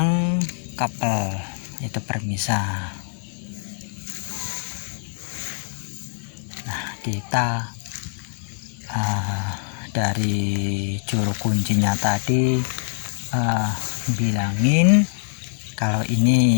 Kapel itu permisah. Nah, kita dari juru kuncinya tadi bilangin kalau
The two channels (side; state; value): right; silent; 63 dB below the other